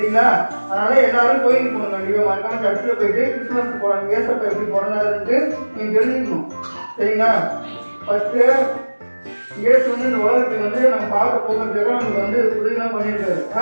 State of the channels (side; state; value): both; inverted; correlation -1.00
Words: அதனால எல்லாரும் கோயிலுக்கு போகணும். கண்டிப்பா மறக்காம சர்ச்சில் போயிட்டு கிறிஸ்துமஸ் போறாங்க. ஏசப்பா எப்படி போறாருன்ட்டு நீங்க தெரிஞ்சுக்கணும். சரிங்களா? ஃபர்ஸ்ட் இயேசு வந்து இந்த உலகத்துக்கு வந்து நம்ம பார்க்க போகிறதுக்காக நமக்கு வந்து உதவிலாம் பண்ணியிருக்காரு.